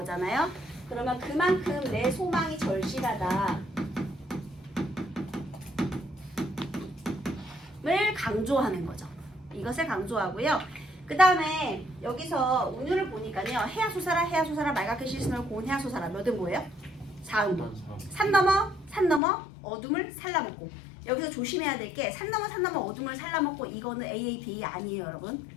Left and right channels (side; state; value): right; drops out; at 19.2 s